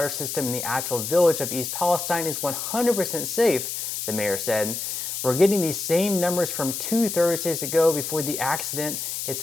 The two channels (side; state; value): left; noise; hiss, 4 dB below the sound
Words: system in the actual village of East Palestine is 100% safe, the mayor said. "We're getting these same numbers from 2 Thursdays ago before the accident. It's